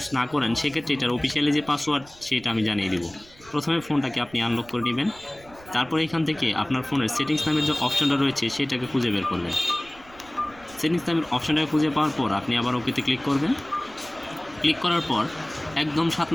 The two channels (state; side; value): noise; right; rumble, 23 dB below the sound